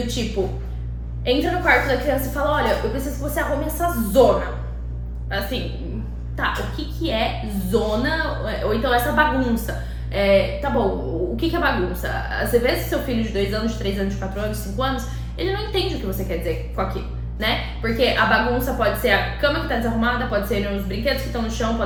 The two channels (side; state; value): both; identical; correlation 1.00